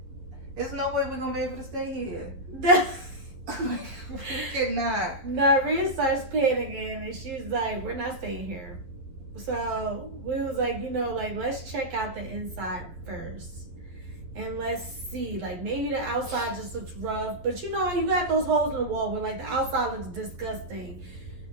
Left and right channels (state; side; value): late; left; 11 ms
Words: There's no way we're gonna be able to stay here. We cannot. Now Rhea starts panicking and she's like, we're not staying here. So we was like, let's check out the inside first. and let's see. Like maybe the outside just looks rough, but you know how you got those holes in the wall where like the outside looks disgusting,